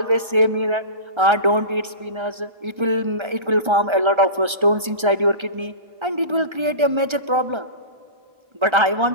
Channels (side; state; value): left; late; 1.3 ms